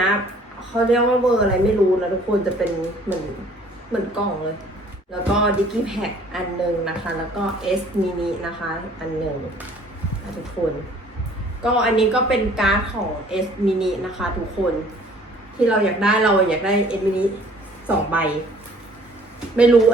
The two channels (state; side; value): normal; both; correlation 0.55